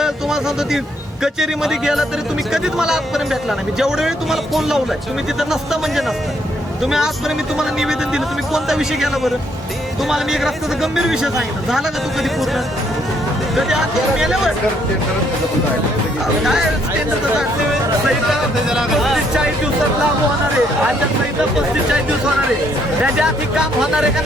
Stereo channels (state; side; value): normal; both; correlation 0.70